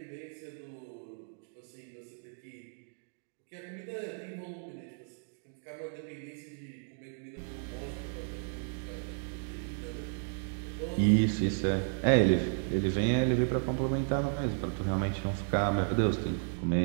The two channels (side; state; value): left; silent; digital silence